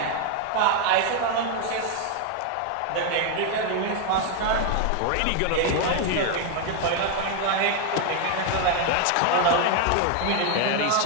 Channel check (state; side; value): different; both; correlation 0.01